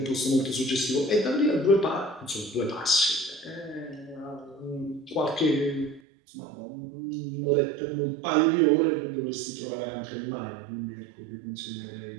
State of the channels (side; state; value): left; drops out; at 6.0 s